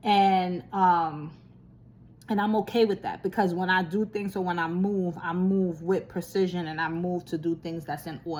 And I'm okay with that, because when I do things, or when I move with precision, and I move to do things that's in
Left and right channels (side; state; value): both; identical; correlation 1.00